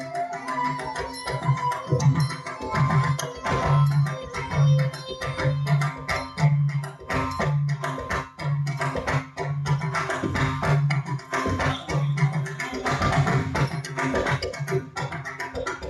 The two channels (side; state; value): both; identical; correlation 1.00